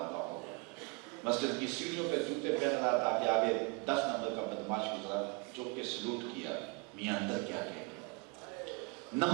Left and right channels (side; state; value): left; quieter; 30.1 dB